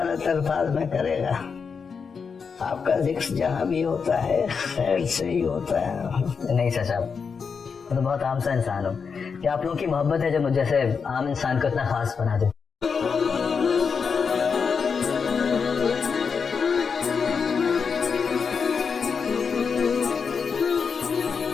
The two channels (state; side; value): quieter; right; 5.8 dB